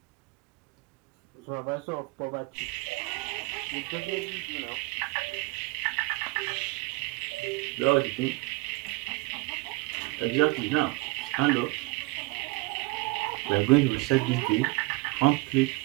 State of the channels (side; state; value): left; quieter; 23.9 dB